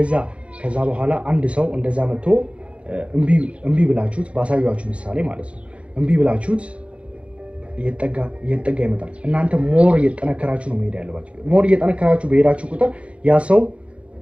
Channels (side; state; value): left; late; 0.061 ms